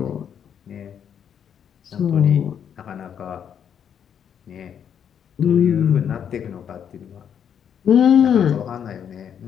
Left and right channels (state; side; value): quieter; right; 8.4 dB